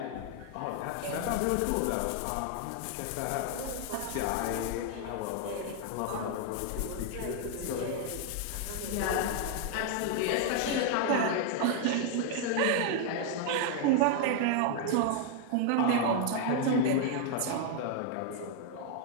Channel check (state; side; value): different; both; correlation 0.00